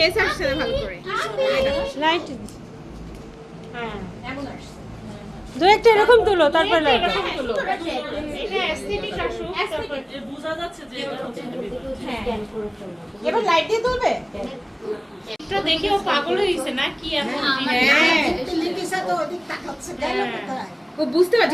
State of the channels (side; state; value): both; identical; correlation 1.00